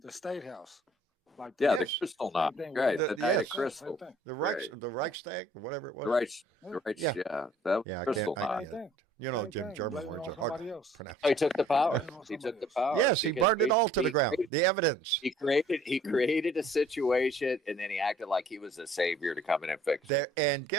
state house. Like Yeah, that. the crystal Same knot. thing Right, with the that. night of Yes. Same crystal. thing. The Right. Reichstag, or whatever it was. The Reich, Yeah. yeah. That Yeah, I crystal can't. knot. Same thing. You know, Same Jim thing. German Blame it words on are hard somebody to else. pronounce. He took the power. Blame it on He took somebody the else. power. Yes, he because burned it all to the ground. created- The evidence. He created a situation, and then he acted like he was a savior to come in and fix it. There, and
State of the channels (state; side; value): normal; both; correlation 0.56